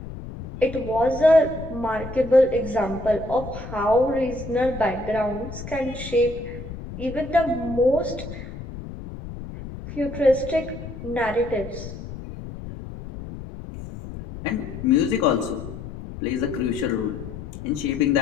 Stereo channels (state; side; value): noise; left; rumble, 11 dB below the sound